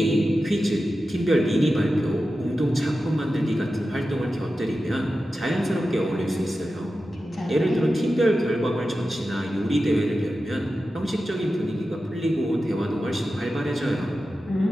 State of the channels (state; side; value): normal; both; correlation 0.92